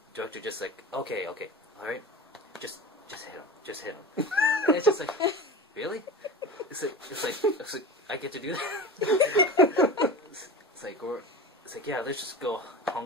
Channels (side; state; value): both; normal; correlation 0.31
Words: director just like, okay, alright, just hit him. And it's just like, really? It's like I get to do that? It's like, yeah, let's just go